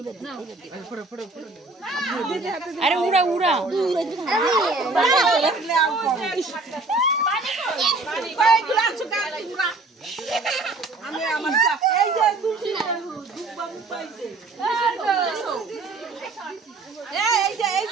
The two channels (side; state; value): left; quieter; 3.5 dB